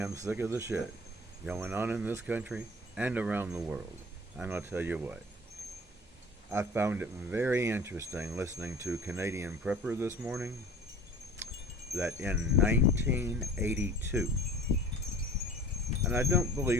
sick of the shit going on in this country and around the world. I'm going to tell you what. I found it very interesting listening to Canadian Prepper this morning that in 1982, and I don't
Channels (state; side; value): normal; both; correlation 0.44